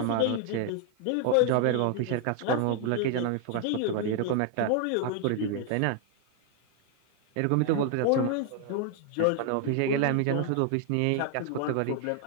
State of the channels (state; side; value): different; both; correlation 0.00